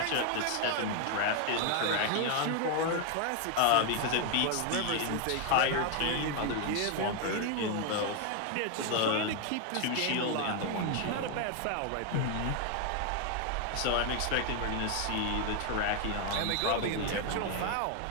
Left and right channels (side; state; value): both; different; correlation 0.00